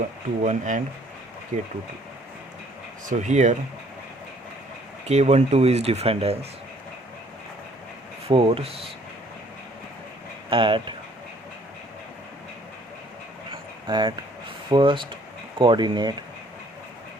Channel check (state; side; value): normal; both; correlation 0.60